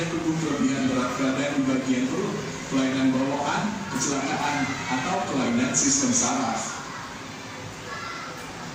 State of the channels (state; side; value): identical; both; correlation 1.00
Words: tubuh kelebihan berat badan di bagian perut, kelainan bawaan, kecelakaan, atau kelainan sistem saraf.